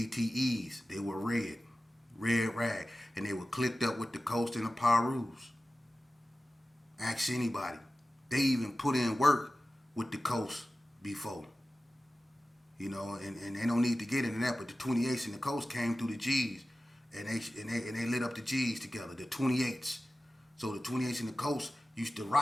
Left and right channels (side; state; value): both; normal; correlation 0.95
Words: they were red rag, and they were clicked up with the Coast and the Pirus. Ask anybody. They even put in work with the Coast before. and they don't need to get into that. But the 28s and the coast came through the G's, and they lit up the G's together. The 28s, so the 28s and the coast used to